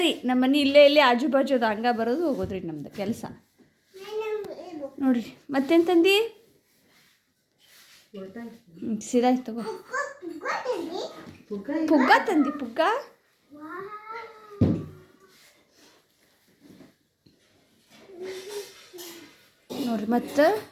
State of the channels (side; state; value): both; identical; correlation 1.00